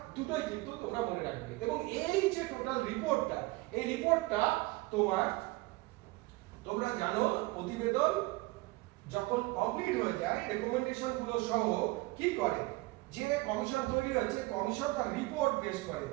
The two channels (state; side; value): quieter; left; 21.9 dB